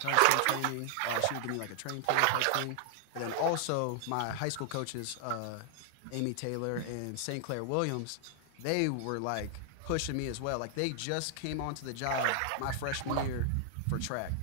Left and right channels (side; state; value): both; different; correlation 0.00